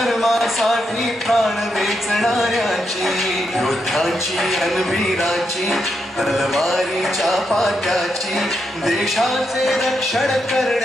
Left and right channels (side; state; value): both; normal; correlation 0.82